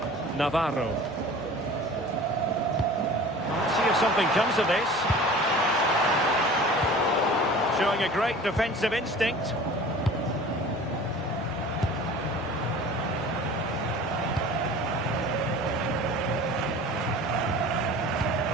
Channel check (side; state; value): both; normal; correlation 0.42